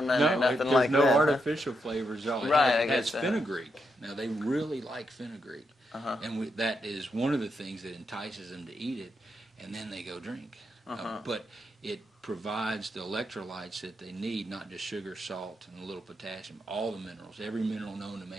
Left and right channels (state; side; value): normal; both; correlation 0.82